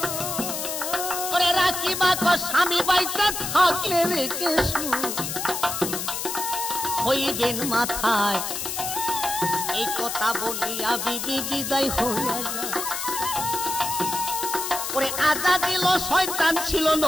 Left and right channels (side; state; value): left; noise; hiss, 4 dB below the sound